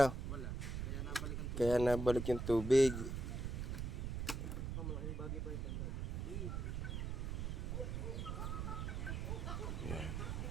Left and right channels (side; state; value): right; noise; rumble, 2 dB below the sound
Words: Kaya nabalik yung tubig. Yan.